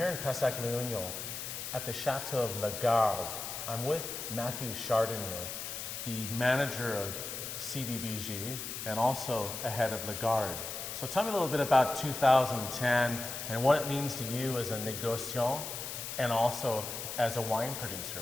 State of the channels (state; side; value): noise; left; hiss, 6 dB below the sound